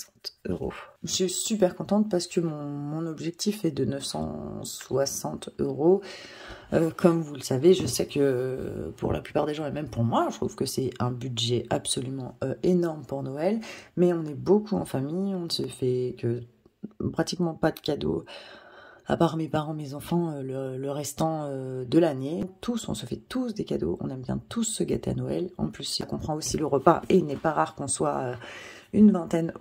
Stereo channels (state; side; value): identical; both; correlation 1.00